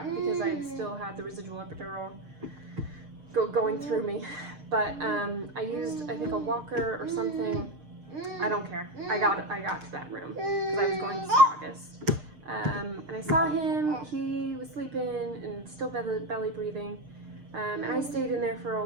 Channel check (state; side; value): late; left; 6.6 ms